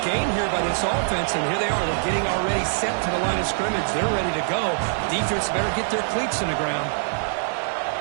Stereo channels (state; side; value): silent; left; 63 dB below the other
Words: game here by this offense, and here they are. They're getting already set to the line of scrimmage. They're ready to go. Defense better get their cleats in the ground.